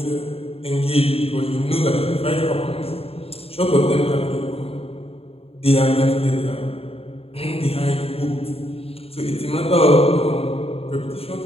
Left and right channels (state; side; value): late; right; 0.28 ms